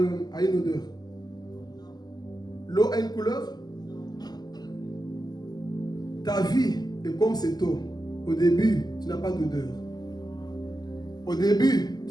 a une odeur? L'eau a une couleur? Ta vie est comme cette eau. Au début, tu n'as pas d'odeur. Au début,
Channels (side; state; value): right; late; 0.20 ms